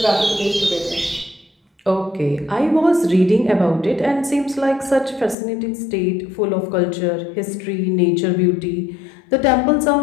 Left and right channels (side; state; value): right; drops out; at 5.4 s